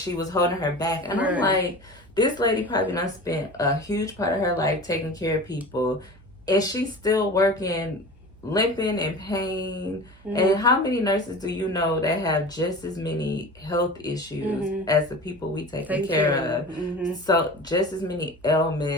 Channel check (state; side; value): noise; right; hum, 25 dB below the sound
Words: was holding her back. And I'm like, this lady probably done spent a huge part of her life taking care of people, and she's still working, limping and pain. And how many nurses do you know that have just as many health issues as the people we taking care of? So just as many